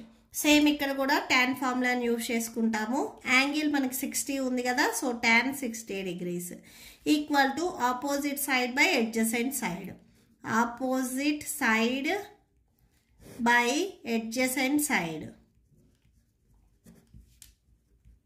Same ఇక్కడ కూడా tan ఫార్ములాని యూజ్ చేసుకుంటాము. యాంగిల్ మనకి 60 ఉంది కదా, so tan 60 degrees equal to opposite side by adjacent side, opposite side by adjacent side.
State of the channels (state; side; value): identical; both; correlation 1.00